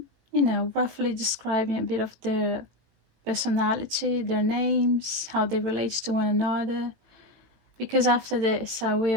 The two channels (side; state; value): left; late; 18 ms